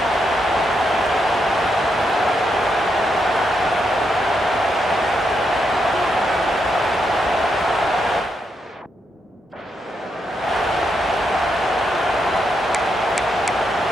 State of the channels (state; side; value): normal; both; correlation 0.81